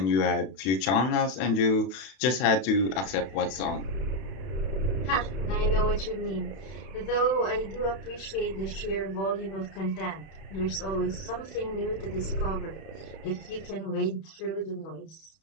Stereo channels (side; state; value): right; late; 31 ms